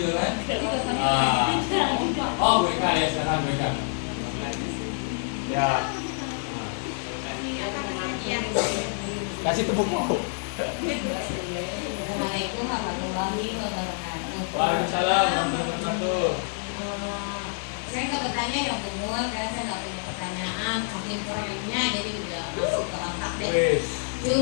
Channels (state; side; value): silent; right; 58 dB below the other